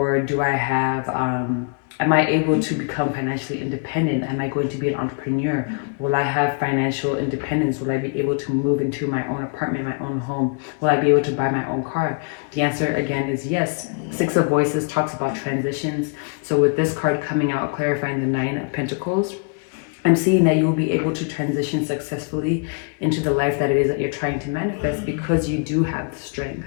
do I have, am I able to become financially independent? Am I going to be an entrepreneur? Will I have financial independence? Will I be able to move into my own apartment, my own home? Will I be able to buy my own car? The answer again is yes. Six of Voices talks about transitions. So with this card coming out, clarifying the Nine of Pentacles, I'm seeing that you'll be able to transition successfully into the life that it is that you're trying to manifest, because you do have the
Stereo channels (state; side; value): quieter; right; 36.7 dB